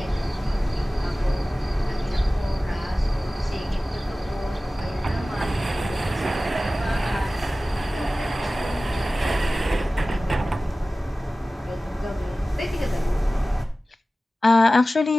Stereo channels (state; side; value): normal; both; correlation 0.96